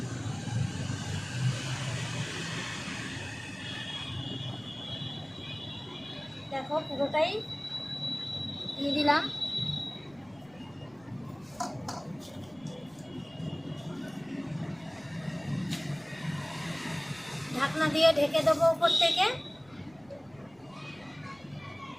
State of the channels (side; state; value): right; noise; rumble, 27 dB below the sound